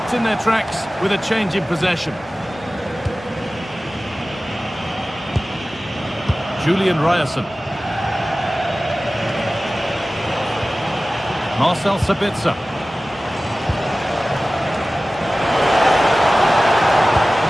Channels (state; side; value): normal; both; correlation 0.97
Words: in their tracks with a change in possession. Julian Ryerson. Marcel Sabitzer.